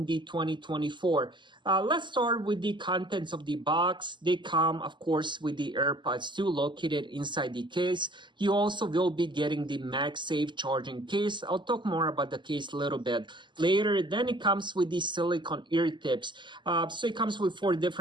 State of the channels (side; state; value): left; late; 0.22 ms